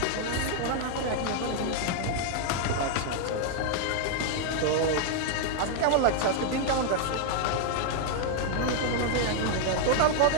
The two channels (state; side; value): different; both; correlation 0.00